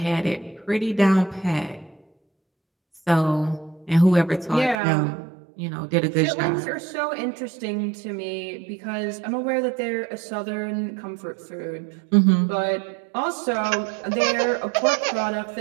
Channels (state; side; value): drops out; left; at 4.8 s